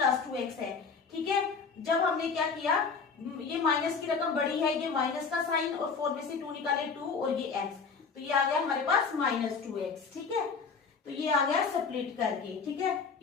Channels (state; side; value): quieter; right; 5.3 dB